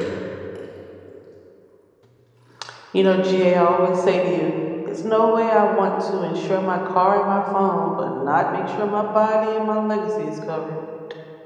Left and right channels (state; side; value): identical; both; correlation 1.00